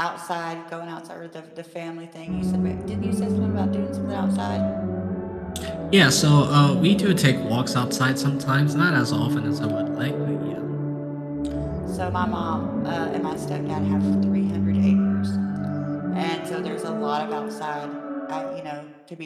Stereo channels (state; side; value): identical; both; correlation 1.00